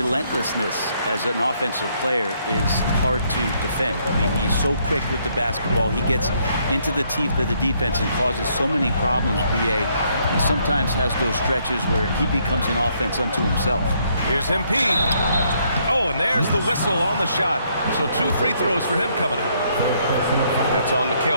as an offensive player is hard to defend. I mean, he's so quick with the basketball. He gets into the teeth of the defense and causes so many problems, BA. He sometimes has those stretches where he becomes an offense unto himself. Here's MP. Oh, and there's the whistle on the shot. So 2 free throws for him coming up. That's on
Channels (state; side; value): inverted; both; correlation -0.70